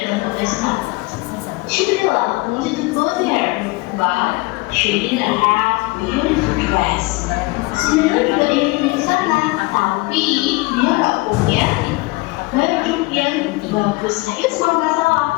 ke pesta. Cinderella wanted to go there, but she didn't have beautiful dress. Cinderella juga ingin ke sana, tapi dia nggak punya baju yang bagus. Nah, itu semua masalah.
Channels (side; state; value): right; quieter; 23.5 dB